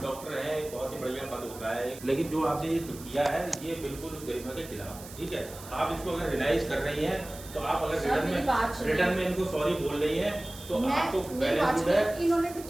डॉक्टर हैं, बहुत ही बढ़िया पद होता है, लेकिन जो आपने ये किया है ये बिल्कुल उस गरिमा के खिलाफ है। ठीक है, आप इसको अगर रियलाइज कर रही हैं तो आप अगर रिटर्न में इनको सॉरी बोल रही हैं तो आपको बैलेंस है। इन्होंने भी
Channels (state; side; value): noise; right; hiss, 16 dB below the sound